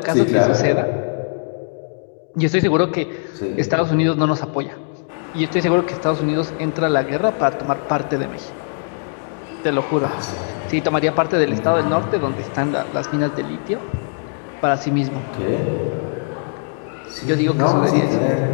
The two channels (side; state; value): right; silent; digital silence